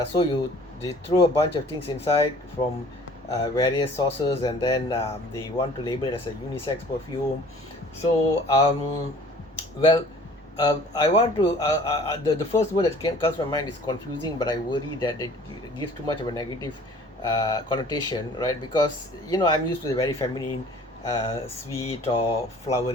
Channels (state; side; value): normal; both; correlation 0.50